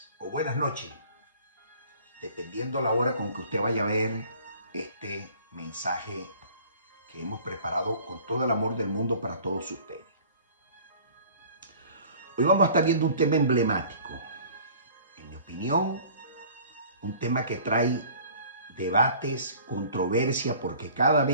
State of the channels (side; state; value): both; inverted; correlation -0.49